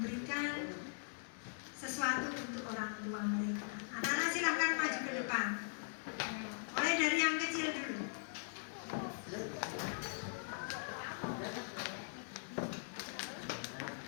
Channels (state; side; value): silent; right; digital silence